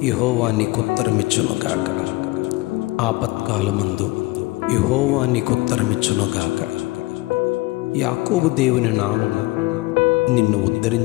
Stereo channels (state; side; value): quieter; right; 21.4 dB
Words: యెహోవా నీకు ఉత్తరమిచ్చునుగాక. ఆపత్కాలమందు యెహోవా నీకు ఉత్తరమిచ్చునుగాక. యాకోబు దేవుని నామము నిన్ను